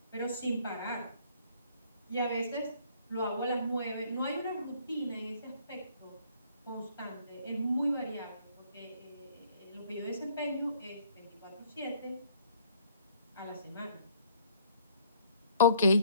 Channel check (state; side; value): inverted; both; correlation -0.59